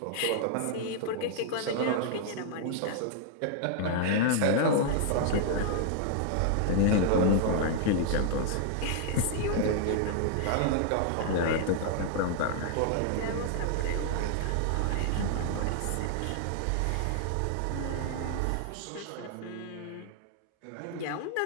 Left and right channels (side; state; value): both; different; correlation 0.00